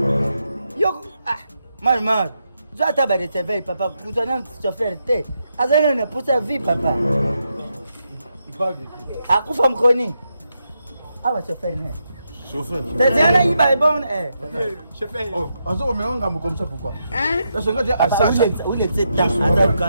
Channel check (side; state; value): both; inverted; correlation -0.83